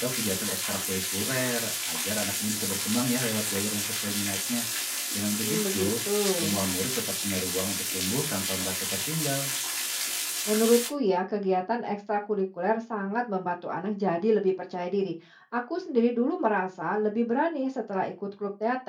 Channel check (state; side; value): identical; both; correlation 1.00